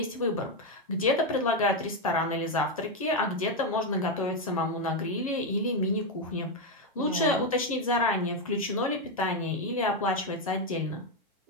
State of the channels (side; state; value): both; normal; correlation 0.06